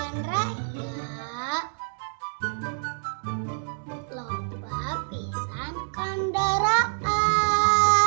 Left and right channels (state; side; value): silent; left; digital silence